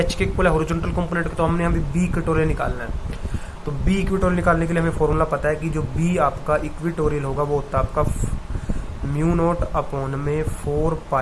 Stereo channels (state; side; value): identical; both; correlation 1.00